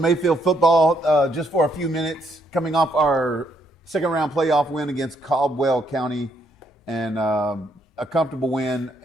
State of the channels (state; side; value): normal; both; correlation 0.73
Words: football just for a few minutes. Coming off our second round playoff win against Caldwell County, and a comfortable win,